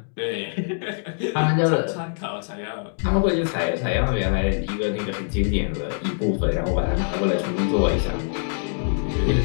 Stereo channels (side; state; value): right; silent; digital silence